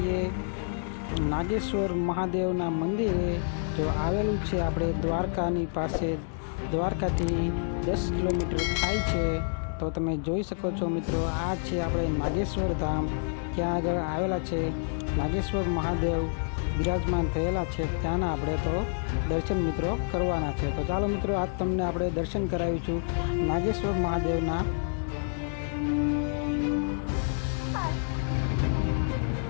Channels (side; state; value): right; silent; digital silence